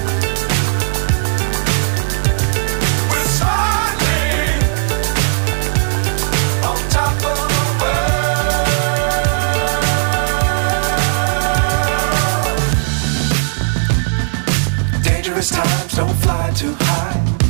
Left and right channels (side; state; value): left; silent; digital silence